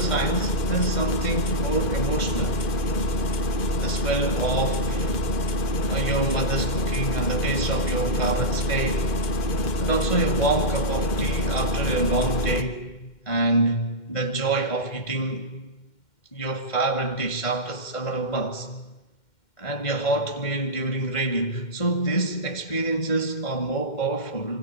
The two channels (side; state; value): right; late; 2.1 ms